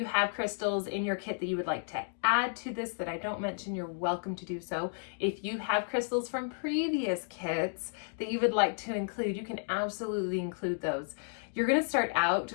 have crystals in your kit that you would like to add to this that I don't mention, you're welcome to do so. If you have crystals from previous kits that you would like to include, you can absolutely include those. You're going to start out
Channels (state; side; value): silent; right; digital silence